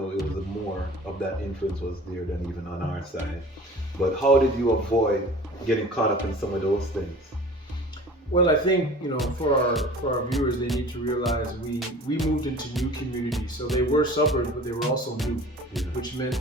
more of that influence was there than even on our side. But how did you avoid getting caught up in some of those things? Well, I think, for our viewers, they need to realize we moved into new communities. So they were suburbs, but they were also new, which meant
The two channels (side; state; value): both; normal; correlation 0.42